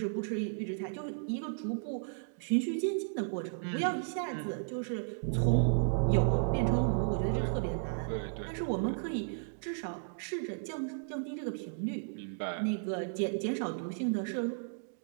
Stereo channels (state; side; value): silent; left; digital silence